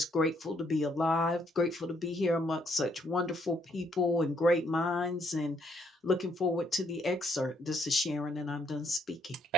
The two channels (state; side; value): normal; both; correlation 0.70